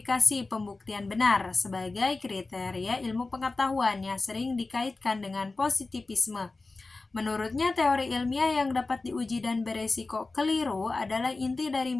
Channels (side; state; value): right; quieter; 3.5 dB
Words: pembuktian benar sebagai kriteria ilmu pengetahuan yang sering dikaitkan dengan positivisme. Menurutnya, teori ilmiah yang dapat diuji dan beresiko keliru adalah inti dari